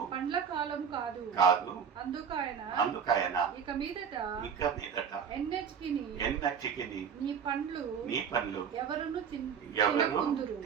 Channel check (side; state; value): left; quieter; 7.2 dB